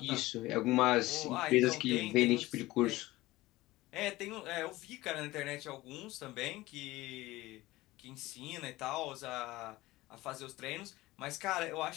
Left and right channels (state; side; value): quieter; right; 18.5 dB